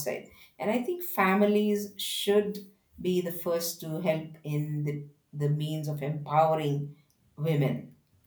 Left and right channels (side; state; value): both; identical; correlation 1.00